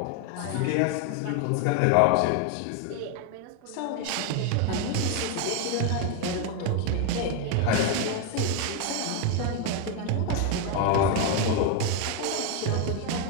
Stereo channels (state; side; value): different; both; correlation 0.01